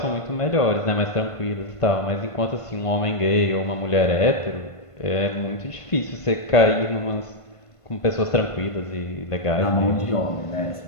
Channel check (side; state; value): right; late; 1.5 ms